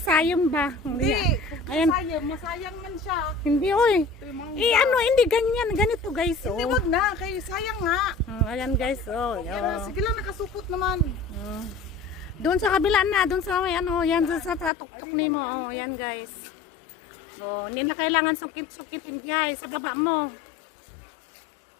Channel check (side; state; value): right; drops out; at 14.7 s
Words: ba? Hindi. Ayan. Masayang man siya. Hindi, oy. Hindi ganyan, ganito, guys. Hindi, wag na, kay sayang nga. Ayan, guys. Sige lang, nakasupot naman. Doon sa kabila na, doon sa may yan sa tuktok nimo. Yan, guys. Hindi na kailangan sukit-sukitin, guys, sa baba mo.